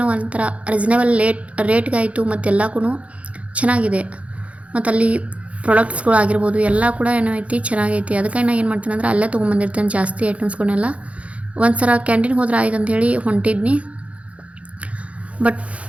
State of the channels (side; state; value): left; late; 0.064 ms